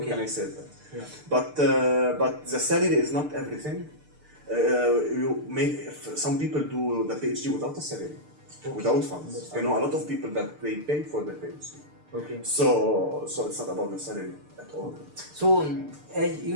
Can I say that? Yeah. But the salary is not everything. Some people do the PhD without a salary, without funds. I know a lot of people that they pay for their PhD. Okay. So it's not about the salary at all. So, as you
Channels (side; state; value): left; late; 6.7 ms